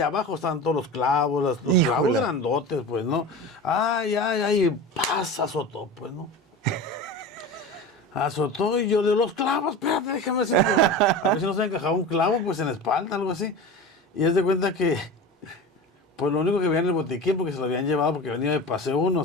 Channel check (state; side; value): normal; both; correlation 0.31